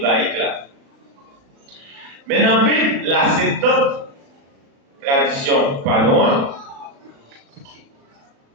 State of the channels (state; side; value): late; left; 36 ms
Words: là. Mais dans la Bible, la Septante tradition pas loin,